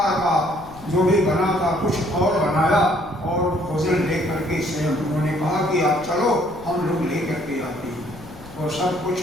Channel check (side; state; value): left; noise; rumble, 19 dB below the sound